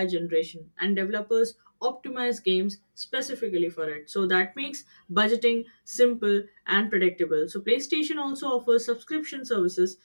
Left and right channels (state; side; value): inverted; both; correlation -1.00